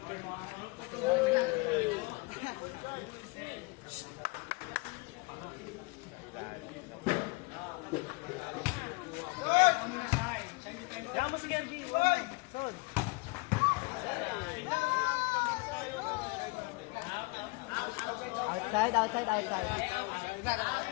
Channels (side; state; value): right; quieter; 26.4 dB